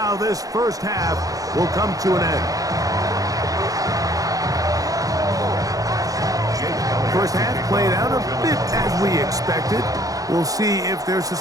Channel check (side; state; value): left; late; 0.17 ms